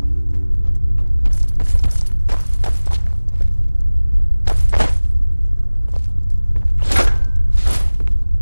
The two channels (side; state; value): both; inverted; correlation -1.00